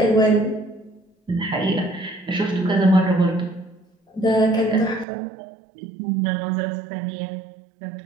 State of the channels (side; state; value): left; drops out; at 5.1 s